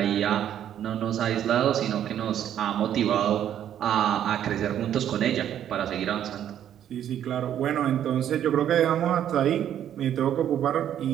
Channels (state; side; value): quieter; left; 10.4 dB